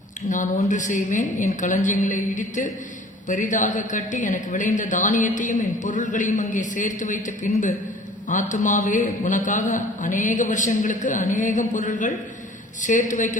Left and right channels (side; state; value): both; normal; correlation 0.48